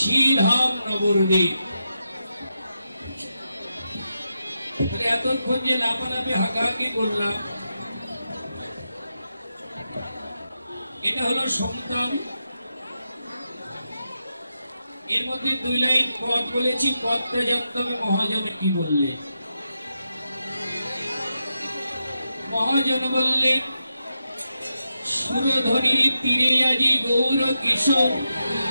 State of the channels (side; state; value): both; inverted; correlation -0.87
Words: নবদ্বীপ। এতক্ষণ যে লাফালাফি হাঁকাহাঁকি করলাম, এটা হলো সমতাল। এর মধ্যে 2 লাইন পদ বলেছি, পদটা জানতে হবে মহাজন কি বললে। মহাজন বললেন, সুরধনির তীরে আজি গৌর কিশোর,